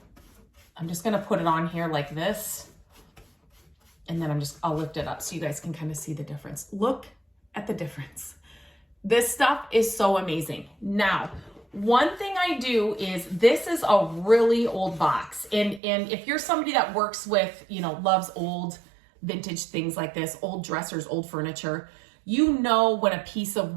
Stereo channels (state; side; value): drops out; left; at 15.8 s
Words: I'm just going to put it on here like this. And then I'll lift it up so you guys can kind of see the difference. Look at the difference. This stuff is so amazing. Now, one thing I do is, this is a really old box. And if you're somebody that works with, loves old vintage things like this, old dressers, old furniture, when a piece of